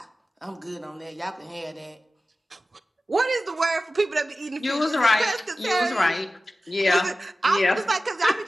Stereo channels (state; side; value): normal; both; correlation 0.95